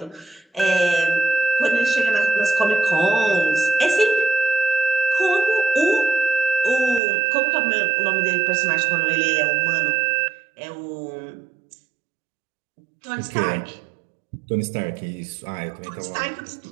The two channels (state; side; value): drops out; left; at 7.0 s